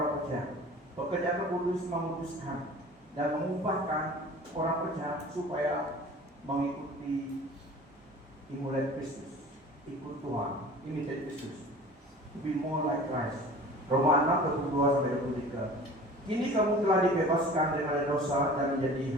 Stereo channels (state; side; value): normal; both; correlation 0.42